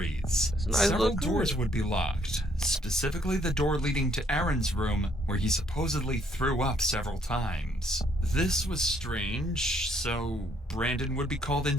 That's a nice Several little doors crib. would be locked, specifically the door leading to Aaron's room, where he supposedly threw up several times. This was strange, so Brandon would be called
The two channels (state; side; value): normal; both; correlation 0.68